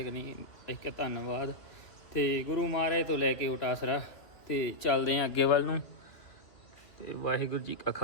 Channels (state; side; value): late; right; 2.2 ms